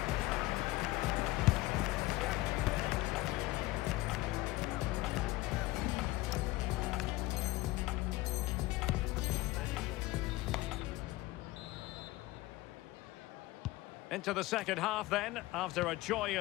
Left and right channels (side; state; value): right; quieter; 18.9 dB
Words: Into the second half then, after a